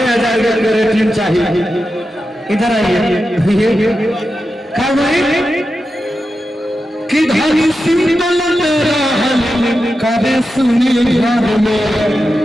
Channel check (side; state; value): both; normal; correlation 0.90